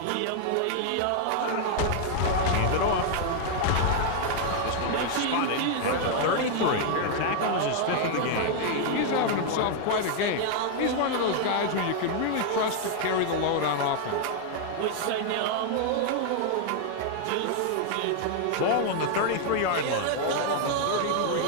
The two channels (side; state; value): both; different; correlation 0.00